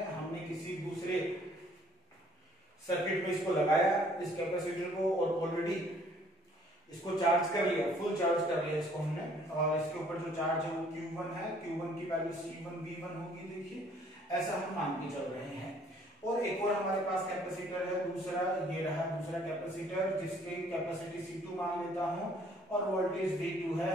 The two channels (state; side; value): normal; both; correlation 0.60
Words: हमने किसी दूसरे सर्किट में इसको लगाया इस कैपेसिटर को और ऑलरेडी इसको चार्ज कर लिया, फुल चार्ज कर लिया इसको हमने, और इसके ऊपर जो चार्ज है वो Q1 है, Q1 की वैल्यू C1 V1 होगी। देखिए ऐसा हम मान के चल रहे हैं। और एक और हमारे पास कैपेसिटर है दूसरा, ये रहा दूसरा कैपेसिटर जिसकी कैपेसिटी C2 मान लेता हूं और वोल्टेज V2 है।